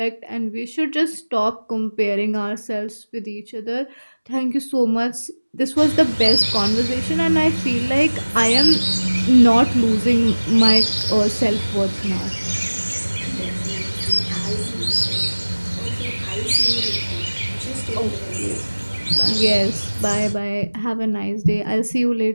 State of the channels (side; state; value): both; inverted; correlation -1.00